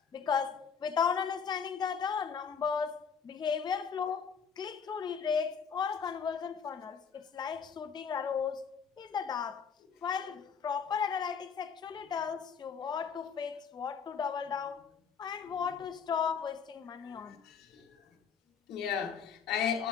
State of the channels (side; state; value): right; quieter; 6.6 dB